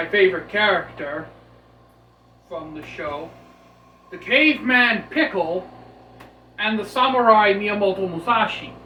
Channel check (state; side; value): identical; both; correlation 1.00